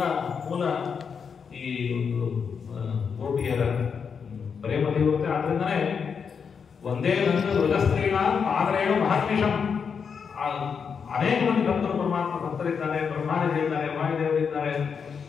ಮೂಲ ಈ ಒಂದು ಗೋಪಿಯರ ಪ್ರೇಮ ತೀವ್ರತೆ. ಆದ್ರಿಂದನೇ ಒಂದೇ ವೃಜಸ್ತ್ರೀಣ ಆದರೇನು ಮಹರ್ನಿಷಂ. ಅನೇಕ ಮಂದಿ ಭಕ್ತರು ಪರಮಾತ್ಮ ಭಕ್ತರಿದ್ದಾರೆ, ಬ್ರಹ್ಮಾದಿಗಳಿದ್ದಾರೆ, ವಾಯುದೇವರಿದ್ದಾರೆ,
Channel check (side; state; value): right; quieter; 6.3 dB